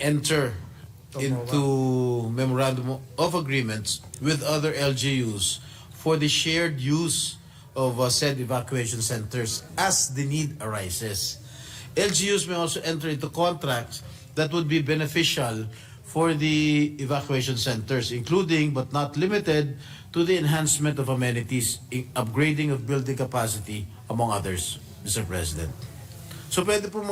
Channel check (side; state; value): both; identical; correlation 1.00